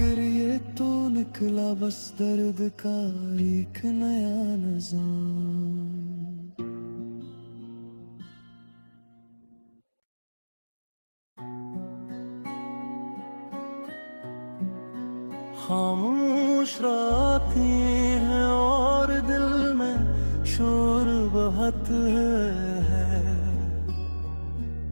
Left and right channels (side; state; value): both; inverted; correlation -1.00